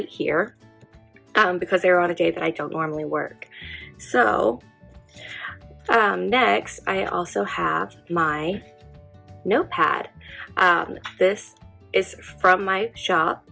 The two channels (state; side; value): identical; both; correlation 1.00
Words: here because they're on a day that I don't normally work. So next I also have my notepad. This is from my shop.